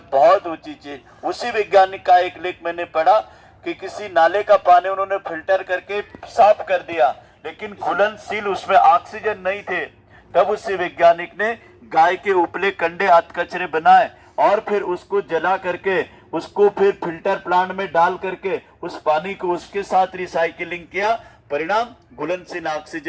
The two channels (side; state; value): both; identical; correlation 1.00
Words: बहुत ऊंची चीज। उसी वैज्ञानिक का एक लेख मैंने पढ़ा कि किसी नाले का पानी उन्होंने फिल्टर करके साफ कर दिया, लेकिन घुलनशील उसमें ऑक्सीजन नहीं थे। तब उसी वैज्ञानिक ने गाय के उपले कंडे अधकचरे बनाए और फिर उसको जला करके उसको फिर फिल्टर प्लांट में डाल करके उस पानी को उसके साथ रिसाइकिलिंग किया। परिणाम घुलनशील